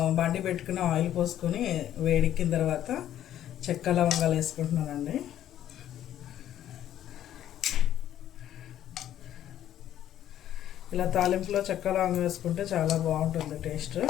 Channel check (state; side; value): quieter; right; 11.5 dB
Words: బండి పెట్టుకుని ఆయిల్ పోసుకొని వేడెక్కిన తర్వాత చెక్క లవంగాలు వేసుకుంటున్నానండి. ఇలా తాలింపులో చెక్క లవంగం వేసుకుంటే చాలా బాగుంటుంది టేస్ట్.